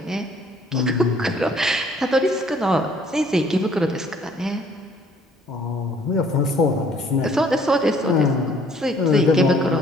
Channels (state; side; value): normal; both; correlation 0.59